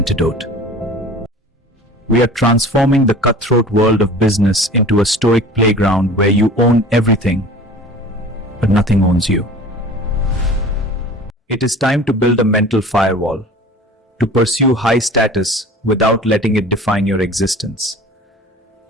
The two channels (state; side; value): normal; both; correlation 0.42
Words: We are transforming the cutthroat world of business into a stoic playground where you own everything, but nothing owns you. It is time to build a mental firewall, to pursue high status without letting it define your existence.